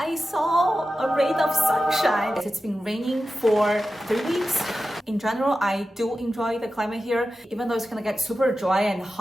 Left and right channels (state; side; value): normal; both; correlation 0.93